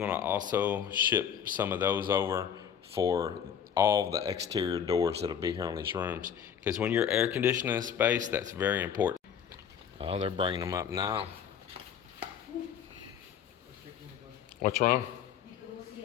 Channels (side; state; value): right; quieter; 8.3 dB